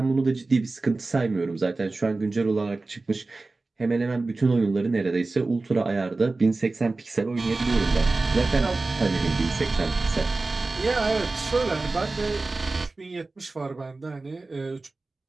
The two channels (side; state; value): left; quieter; 3.4 dB